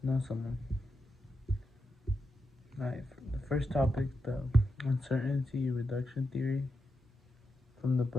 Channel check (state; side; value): normal; both; correlation 0.86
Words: to know someone. The first topic, the uncertainty reduction theory from the